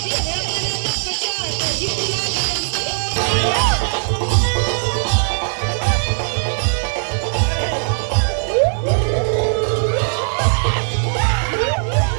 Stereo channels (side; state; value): left; silent; 65 dB below the other